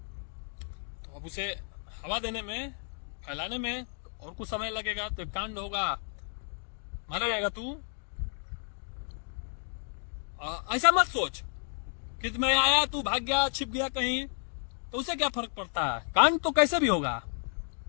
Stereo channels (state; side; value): silent; right; digital silence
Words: अब उसे हवा देने में, फैलाने में और कुछ समय लगेगा। तो कांड होगा, मारा जाएगा तू। ऐसा मत सोच कि मैं आया तू भाग गया, छिप गया कहीं, तो उसे क्या फर्क पड़ता है? कांड तो कैसे भी होगा।